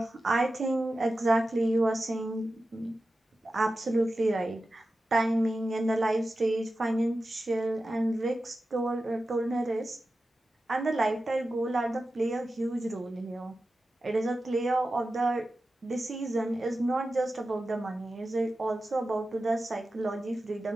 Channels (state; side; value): normal; both; correlation 0.93